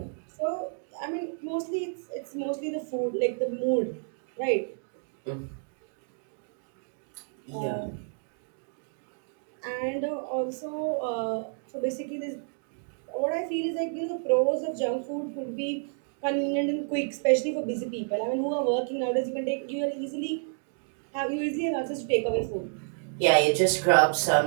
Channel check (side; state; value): left; silent; 58 dB below the other